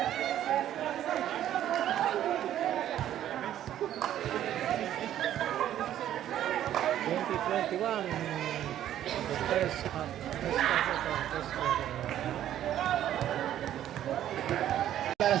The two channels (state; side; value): quieter; left; 11.6 dB